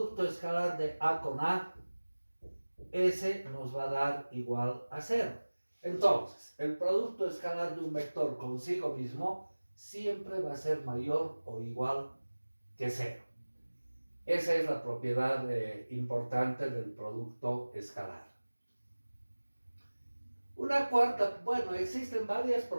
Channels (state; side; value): inverted; both; correlation -1.00